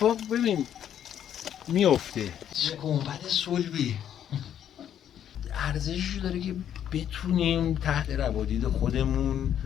ببین میفته. چه گنبد صلبی ارزشی داره که بتونیم تحت روادید خودمون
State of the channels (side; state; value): right; quieter; 9.9 dB